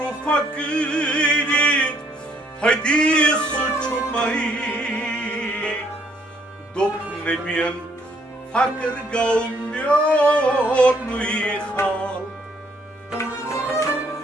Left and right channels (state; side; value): normal; both; correlation 0.67